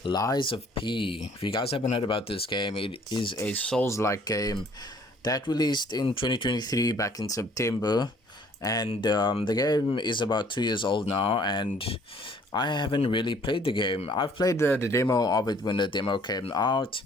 Lies of P. If you guys haven't heard about this game, it is a Souls-like game that released in 2023 back in September. And the game is about 2 years old now, and I haven't really played the game. I've played the demo of it when the demo came out,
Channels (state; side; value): normal; both; correlation 0.58